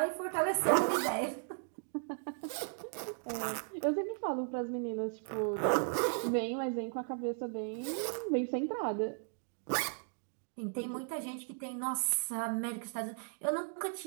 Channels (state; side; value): silent; left; 54 dB below the other